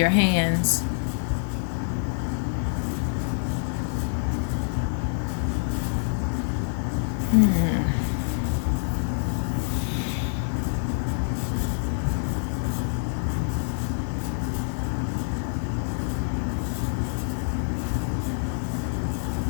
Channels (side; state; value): right; silent; 59 dB below the other